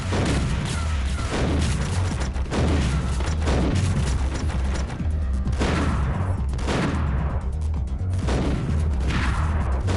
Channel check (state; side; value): identical; both; correlation 1.00